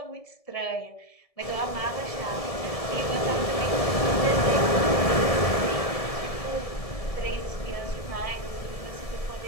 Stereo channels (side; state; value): right; late; 1.7 ms